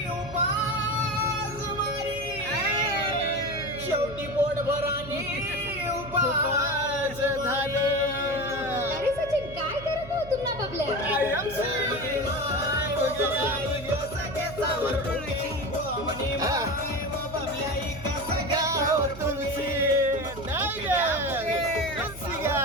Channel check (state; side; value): noise; right; hum, 15 dB below the sound